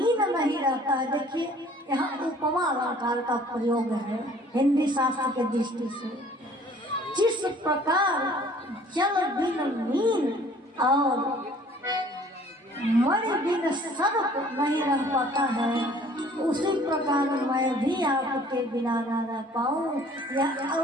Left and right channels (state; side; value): normal; both; correlation 0.54